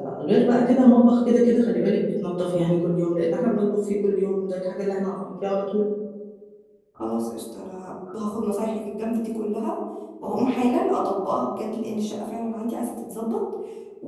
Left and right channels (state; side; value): identical; both; correlation 1.00